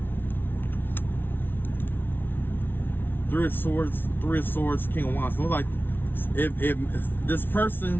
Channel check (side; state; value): right; late; 0.10 ms